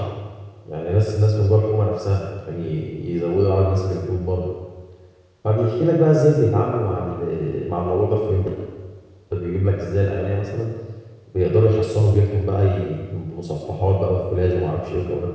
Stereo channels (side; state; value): both; identical; correlation 1.00